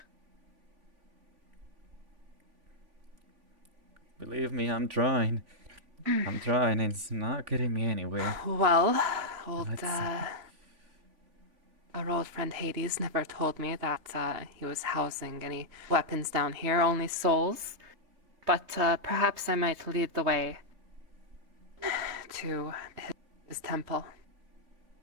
Believe me, I'm trying. I'm trying. It's not getting me anywhere. Well, old, Let's see. our old friend Hades never told me that he was housing any weapons down here, only Souls. But perhaps I might lead the way. to his temple.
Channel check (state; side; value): late; left; 3.3 ms